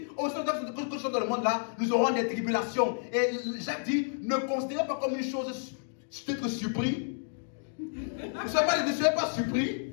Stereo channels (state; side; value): silent; right; digital silence